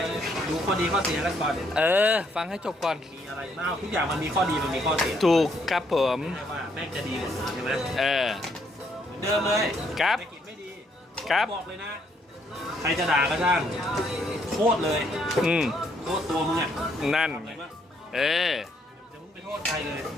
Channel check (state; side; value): normal; both; correlation 0.71